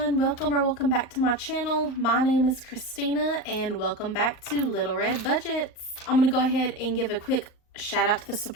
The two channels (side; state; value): right; late; 38 ms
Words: welcome back to my channel. My name is Christina and welcome back to Little Red Budgets. I'm going to go ahead and give a quick shout out to the